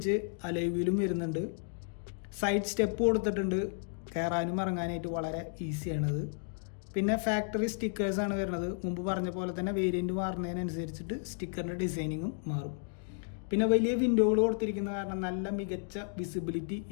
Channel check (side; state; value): right; silent; digital silence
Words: അലോയ് വരുന്നുണ്ട്. സൈഡ് സ്റ്റെപ്പ് കൊടുത്തിട്ടുണ്ട്. കയറാനും ഇറങ്ങാനായിട്ട് വളരെ ഈസിയാണത്. പിന്നെ ഫാക്ടറി സ്റ്റിക്കേഴ്സാണ് വരുന്നത്. മുമ്പ് പറഞ്ഞ പോലെ തന്നെ വേരിയൻറ്റ് മാറുന്നതിനനുസരിച്ചിട്ട് സ്റ്റിക്കറിൻ്റെ ഡിസൈനിങ്ങും മാറും. പിന്നെ വലിയ വിൻഡോകൾ കൊടുത്തിരിക്കുന്ന കാരണം നല്ല മികച്ച വിസിബിലിറ്റി